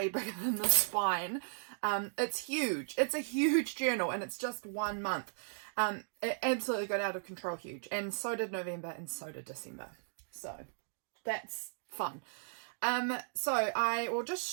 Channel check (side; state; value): left; silent; digital silence